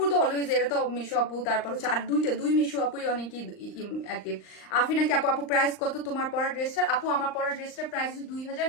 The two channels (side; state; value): right; late; 39 ms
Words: তো অলওয়েজ, এটা তো মিশু আপু। তারপর হচ্ছে আর দুই মিশু আপুই অনেকই অ্যাক্টিভ। আফিনা কি আপু, আপু প্রাইস কত তোমার পরা ড্রেসটা? আপু আমার পরা ড্রেসটার প্রাইস